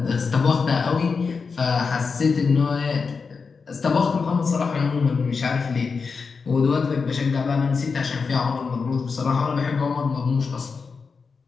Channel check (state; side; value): quieter; right; 5.0 dB